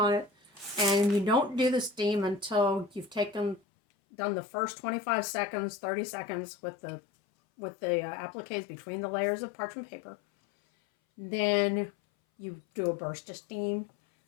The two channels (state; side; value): drops out; right; at 3.6 s